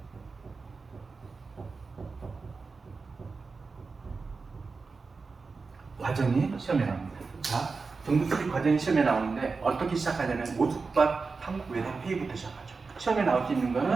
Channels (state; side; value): quieter; left; 4.4 dB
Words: 과정이 시험에 나옵니다. 자, 정부 수립 과정이 시험에 나오는데 어떻게 시작하냐면 오숙과 삼국 외상 회의부터 시작하죠. 시험에 나올 수 있는